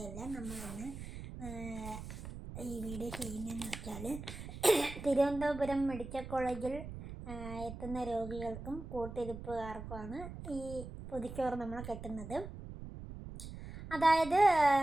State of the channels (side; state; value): right; noise; rumble, 10 dB below the sound